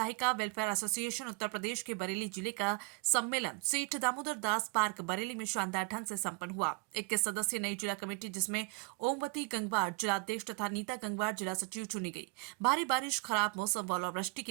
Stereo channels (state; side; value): quieter; left; 29.4 dB